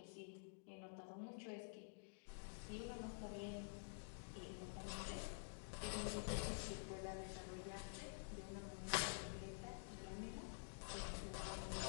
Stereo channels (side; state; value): right; silent; digital silence